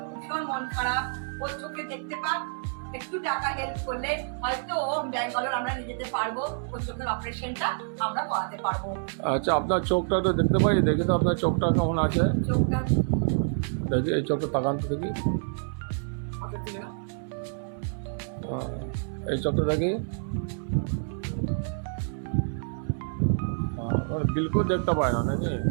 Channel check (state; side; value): silent; left; 58 dB below the other